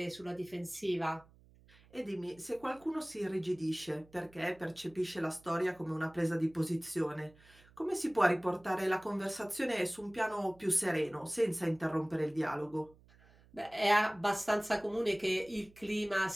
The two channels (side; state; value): right; noise; hum, 26 dB below the sound